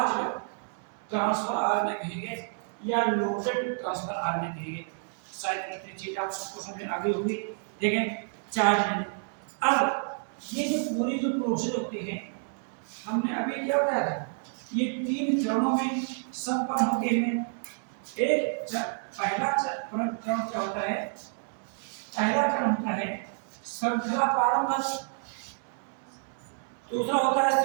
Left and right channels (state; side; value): silent; left; 58 dB below the other